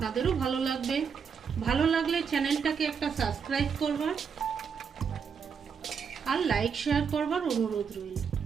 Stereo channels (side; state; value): left; quieter; 6.5 dB